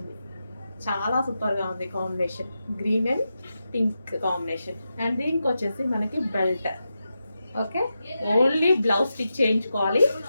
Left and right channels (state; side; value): inverted; both; correlation -0.89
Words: చాలా సూపర్గా ఉంది combination, green and pink combination. And దీనికి వచ్చేసి మనకి belt. Okay, only blouse stitch చేయించుకోవాలి,